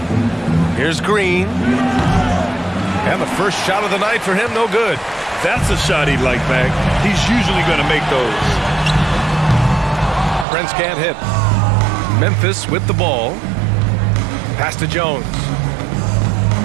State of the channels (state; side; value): drops out; left; at 10.5 s